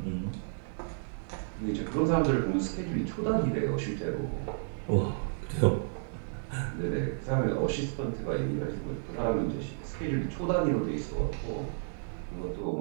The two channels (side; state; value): left; silent; digital silence